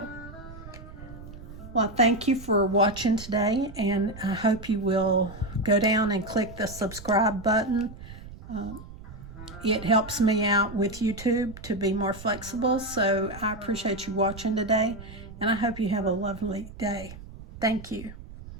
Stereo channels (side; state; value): right; noise; rumble, 15 dB below the sound